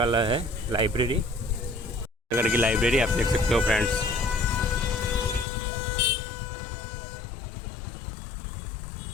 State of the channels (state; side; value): drops out; right; at 5.5 s